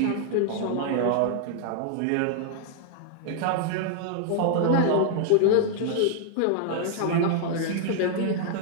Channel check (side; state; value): both; different; correlation -0.01